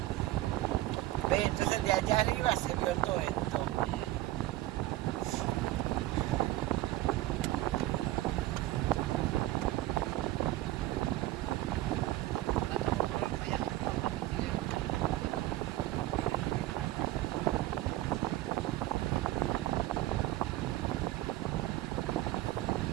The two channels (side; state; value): left; quieter; 16.3 dB